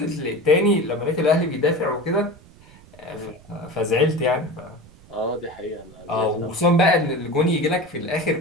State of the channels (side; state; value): right; noise; rumble, 24 dB below the sound